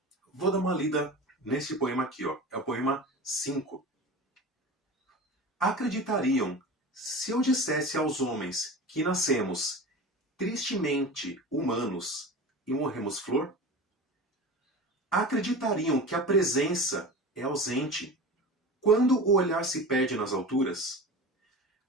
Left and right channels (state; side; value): normal; both; correlation 0.32